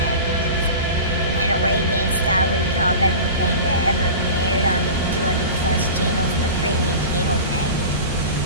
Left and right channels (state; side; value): inverted; both; correlation -0.33